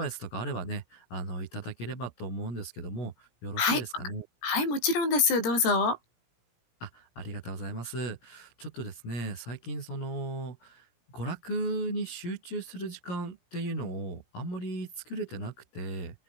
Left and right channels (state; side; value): late; right; 17 ms